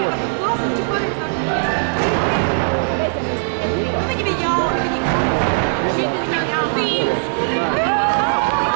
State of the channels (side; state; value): left; silent; digital silence